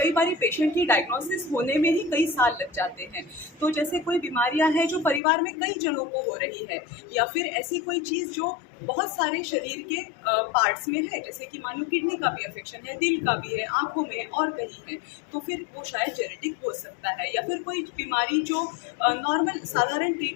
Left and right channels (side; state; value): right; drops out; at 5.2 s